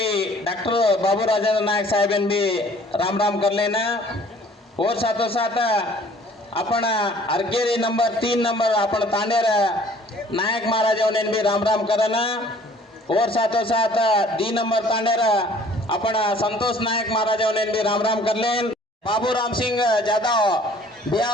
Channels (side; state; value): both; normal; correlation 0.54